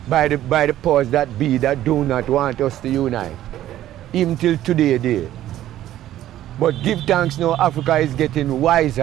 by the powers that be that do not want us to unite, even till today. But give thanks now, Africa is getting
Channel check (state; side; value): quieter; left; 13.1 dB